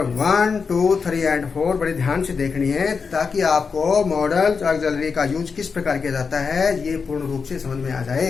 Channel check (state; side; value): quieter; right; 5.4 dB